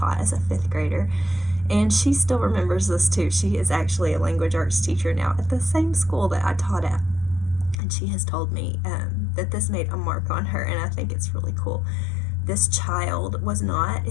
as a 5th grader. And she still remembers this too. She is actually a language arts teacher now at the same school that I taught at. And she has told me that this made a mark on her, and I think it's really cool. this child was not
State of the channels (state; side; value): drops out; right; at 7.8 s